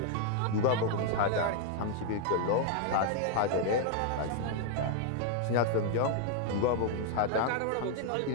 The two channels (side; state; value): both; different; correlation 0.00